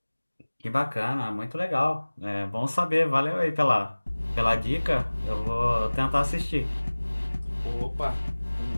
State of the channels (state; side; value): inverted; both; correlation -1.00